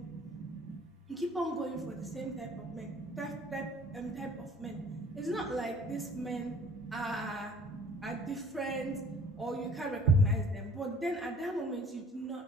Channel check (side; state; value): both; normal; correlation 0.52